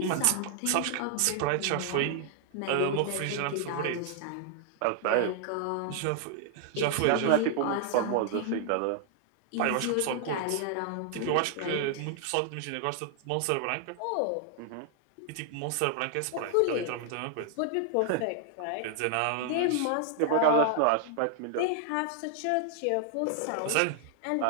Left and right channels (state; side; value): different; both; correlation 0.00